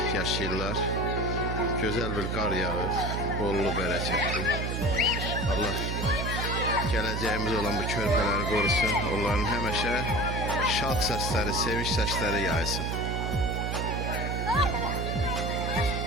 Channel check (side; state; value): right; noise; hum, 2 dB below the sound